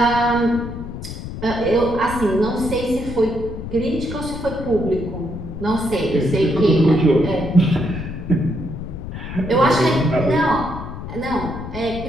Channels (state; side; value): noise; left; rumble, 9 dB below the sound